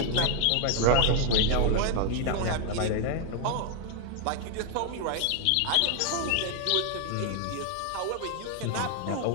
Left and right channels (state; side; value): different; both; correlation 0.00